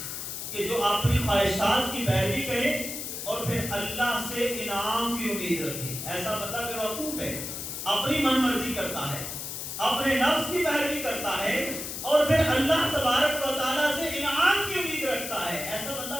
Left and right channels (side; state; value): left; noise; hiss, 6 dB below the sound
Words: کہ جو اپنی خواہشات کی پیروی کرے اور پھر اللہ سے انعام کی امید رکھے. ایسا بندہ بے وقوف ہے, اپنی من مرضی کرتا ہے, اپنے نفس کی پیروی کرتا ہے اور پھر اللہ تبارک و تعالیٰ سے انعام کی امید رکھتا ہے. ایسا